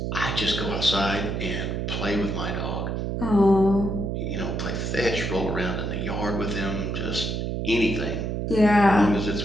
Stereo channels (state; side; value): noise; right; hum, 2 dB below the sound